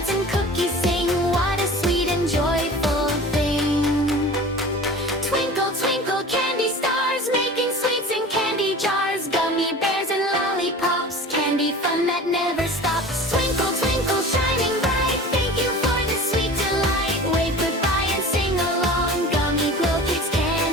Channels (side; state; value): both; normal; correlation 0.38